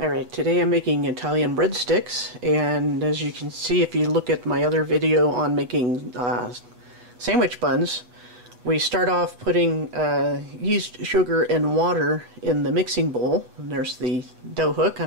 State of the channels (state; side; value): late; left; 8.3 ms